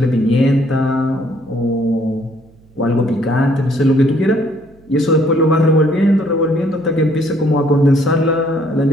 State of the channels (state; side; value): noise; right; hum, 29 dB below the sound